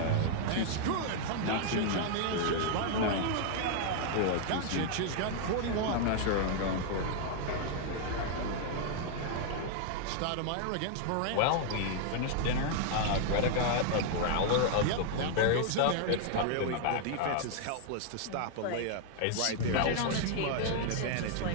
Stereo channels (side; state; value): both; different; correlation 0.00